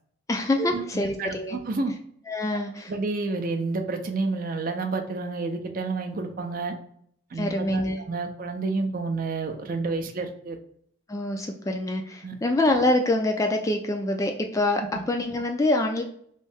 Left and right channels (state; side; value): normal; both; correlation 0.52